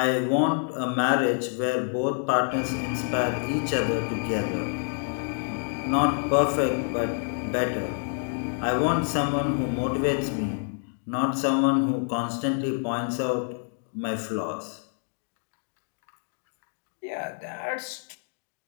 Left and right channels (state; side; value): silent; right; 60 dB below the other